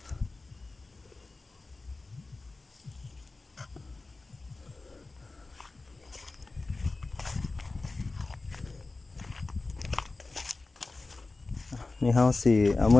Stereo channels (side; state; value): right; quieter; 3.4 dB